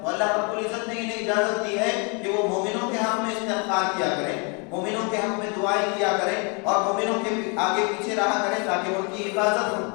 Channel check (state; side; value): quieter; right; 33.9 dB